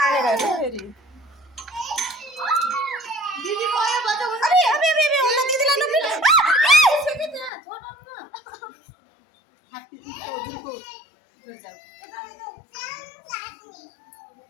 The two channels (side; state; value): right; drops out; at 7.5 s